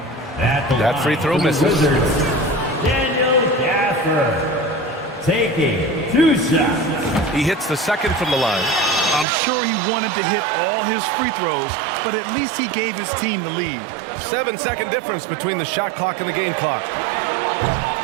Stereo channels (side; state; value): left; drops out; at 9.2 s